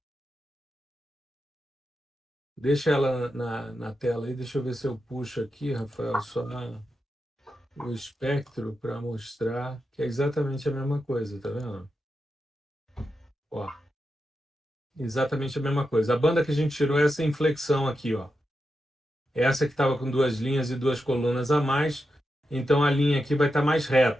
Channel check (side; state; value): both; normal; correlation 0.88